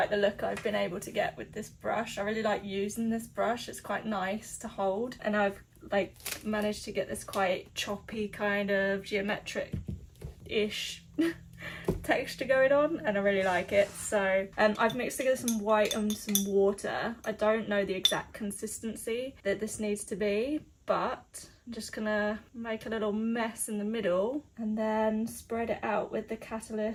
the look I've been able to get with this brush. I really like using this brush. It's quite nice to hold, and I've like managed to get this quite choppy kind of geometric-ish texture going on, and I really like it. So I've mixed together some white and some water. I don't know the exact consistency that this needs to be, but I'm just gonna make a little mess in the middle and then spread it out with the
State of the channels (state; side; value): identical; both; correlation 1.00